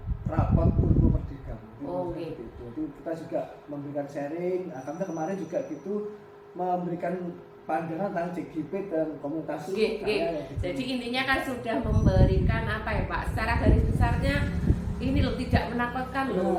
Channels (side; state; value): both; identical; correlation 1.00